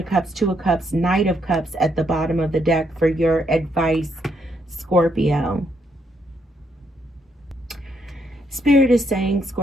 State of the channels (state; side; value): normal; both; correlation 0.75